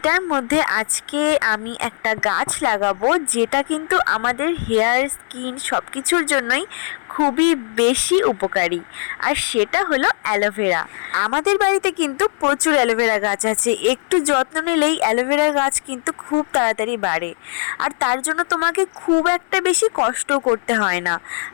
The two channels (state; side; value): silent; right; 60 dB below the other